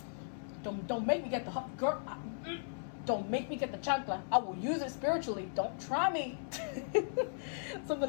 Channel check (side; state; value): right; silent; 53 dB below the other